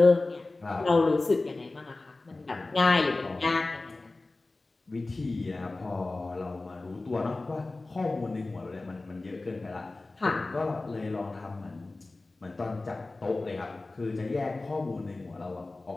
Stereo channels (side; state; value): right; quieter; 3.2 dB